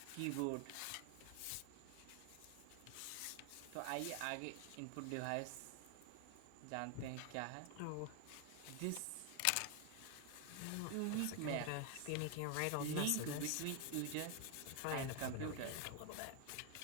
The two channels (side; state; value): both; different; correlation 0.01